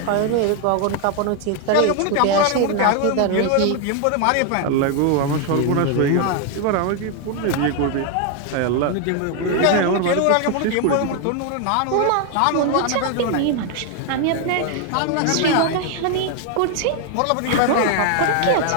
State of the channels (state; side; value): different; both; correlation 0.01